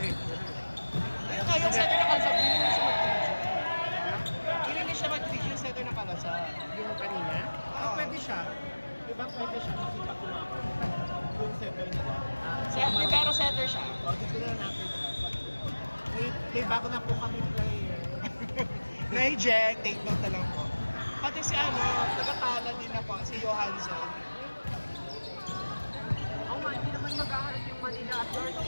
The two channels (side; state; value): both; inverted; correlation -1.00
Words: Ayun nga, yung setter na kalasab, hindi na siya mag-3G. Hindi na siya mag-3G yung setter na kalasab. Yung kanina? Oo. Pwede siya. Diba pwede siya kasi pag kumako. Yung setter nila. Pero setter siya. O, dito na natin siya. May bago na po kami player. Na-eject, take note na lang po. Pati si taga-tala din na po, si Johansson. maghaharap yung Manila at North.